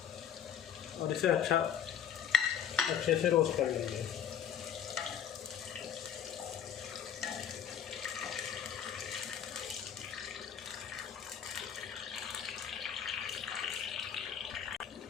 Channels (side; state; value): right; quieter; 9.0 dB